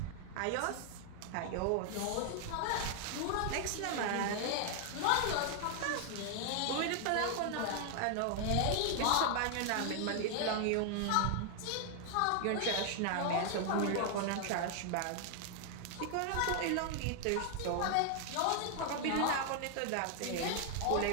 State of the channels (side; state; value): both; different; correlation 0.00